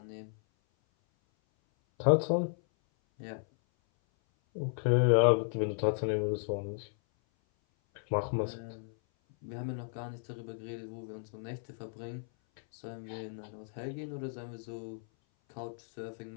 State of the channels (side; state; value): right; silent; 55 dB below the other